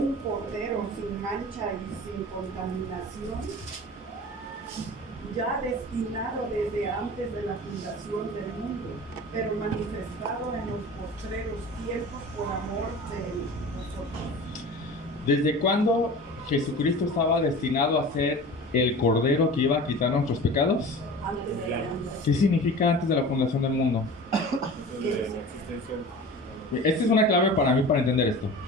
cordero sin mancha y sin contaminación, ya destinado desde antes de la fundación del mundo, pero manifestado en los postreros tiempos por amor de nosotros. ¿Desde cuándo Jesucristo estaba destinado a ser el cordero que iba a quitar nuestros pecados? Antes de la fundación. ¿Qué significa antes de la fundación del mundo? Esta es una clave para mí para entender esto.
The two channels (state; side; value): normal; both; correlation 0.37